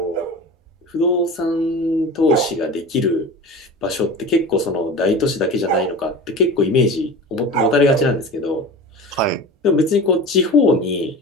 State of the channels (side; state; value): both; normal; correlation 0.33